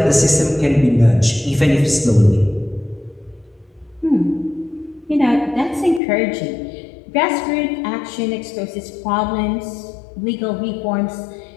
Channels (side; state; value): right; drops out; at 6.0 s